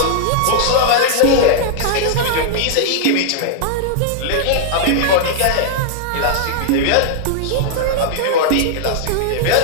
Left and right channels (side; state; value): both; different; correlation -0.01